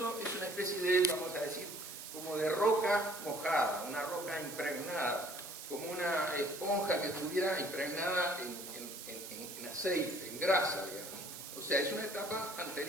es una especie de, vamos a decir, como de roca mojada, una roca impregnada, como una esponja que estuviera impregnada en aceite, en grasa, digamos. O sea, es una etapa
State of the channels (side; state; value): right; noise; hiss, 10 dB below the sound